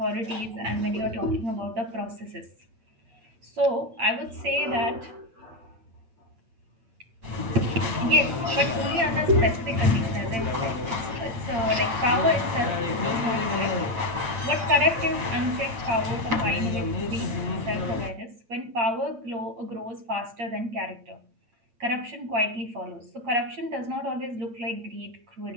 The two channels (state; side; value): late; left; 8.9 ms